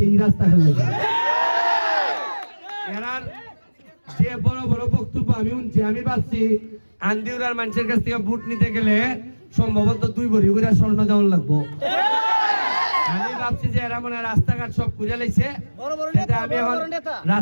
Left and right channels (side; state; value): both; inverted; correlation -1.00